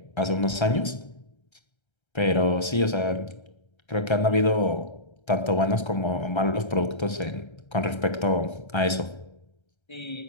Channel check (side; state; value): right; late; 1.3 ms